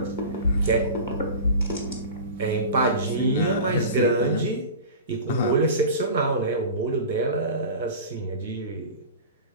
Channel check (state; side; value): inverted; both; correlation -0.34